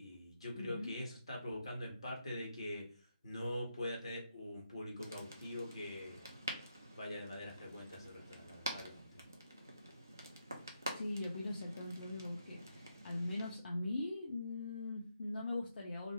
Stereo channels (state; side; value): inverted; both; correlation -0.81